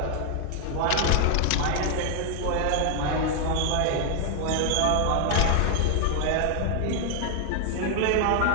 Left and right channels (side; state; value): both; different; correlation 0.00